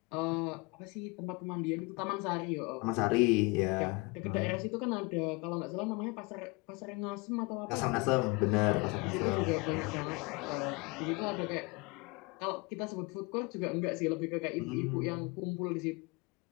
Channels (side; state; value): right; quieter; 27.0 dB